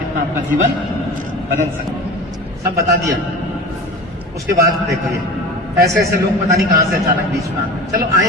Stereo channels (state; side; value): normal; both; correlation 0.35